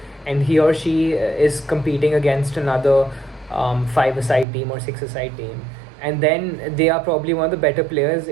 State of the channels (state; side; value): drops out; left; at 4.5 s